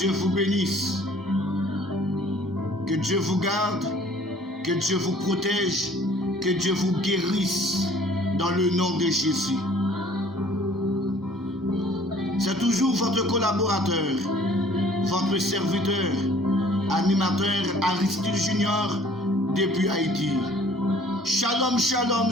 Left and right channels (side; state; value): both; normal; correlation 0.54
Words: vous bénisse. Que Dieu vous garde. Que Dieu vous protège. Que Dieu vous guérisse dans le nom de Jésus. C'est toujours votre collaborateur, votre serviteur, animateur Aristide Junior depuis Haïti. Shalom, shalom